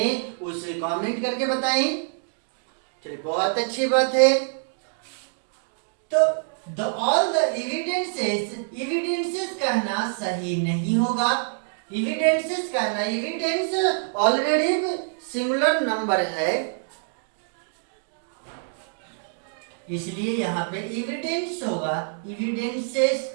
उसे कमेंट करके बताएं। चलिए बहुत अच्छी बात है। तो the all the evidences, evidences कहना सही नहीं होगा। एविडेंसेस कहना, एविडेंस ऑलरेडी सिंगुलर नंबर है, इसलिए यहाँ पे एविडेंस होगा, एविडेंसेस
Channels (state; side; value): silent; left; digital silence